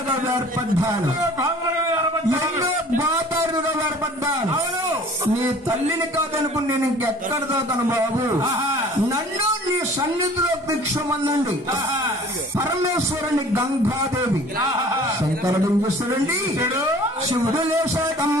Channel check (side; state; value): both; normal; correlation 0.49